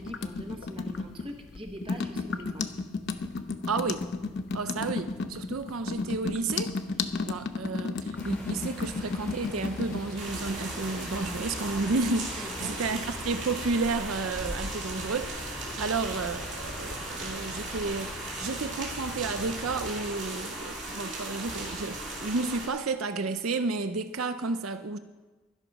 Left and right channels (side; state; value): both; normal; correlation 0.36